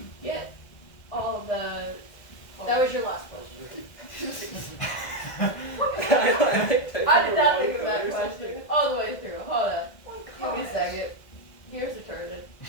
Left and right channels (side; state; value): right; late; 1.6 ms